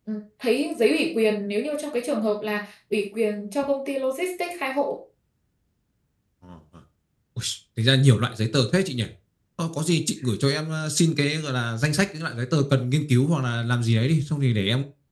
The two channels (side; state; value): both; identical; correlation 1.00